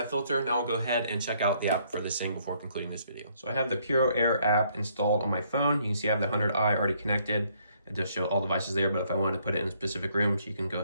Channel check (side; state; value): both; inverted; correlation -0.68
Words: filter. Now we'll go ahead and check out the app for this thing before concluding this video. So I have the PuroAir app installed on my phone. You can see I have the 100i already connected. It does show all devices there, but if I wanted to put it in specific rooms, you can go